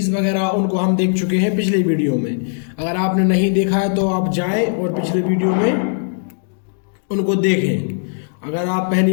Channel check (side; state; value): right; silent; digital silence